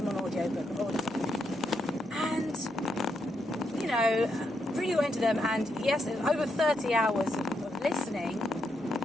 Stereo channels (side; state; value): both; normal; correlation 0.81